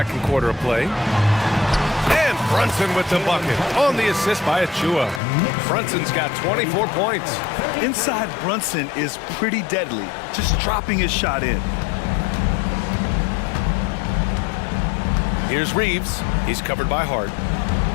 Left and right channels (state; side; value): drops out; right; at 5.2 s